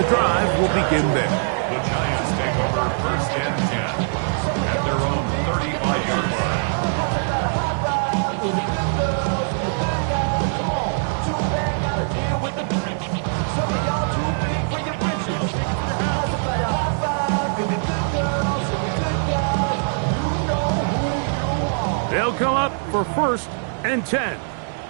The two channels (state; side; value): silent; left; digital silence